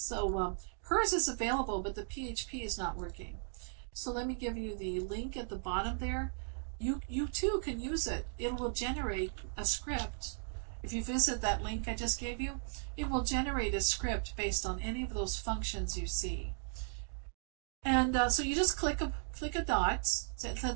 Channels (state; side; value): silent; left; digital silence